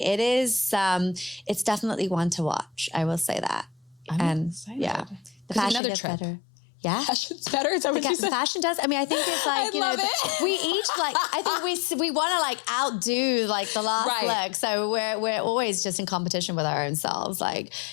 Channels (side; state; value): right; drops out; at 5.8 s